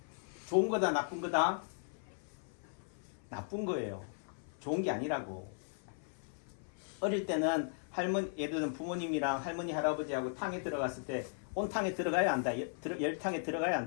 좋은 거다, 나쁜 거다? 나쁜 거예요. 좋은 게 아니라고. 어릴 때는 예를 들면 부모님이랑 할머니, 할아버지하고 탕에 들어갔을 때 온탕에 들어가야 한다. 열탕에 들어가야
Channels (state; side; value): silent; right; 53 dB below the other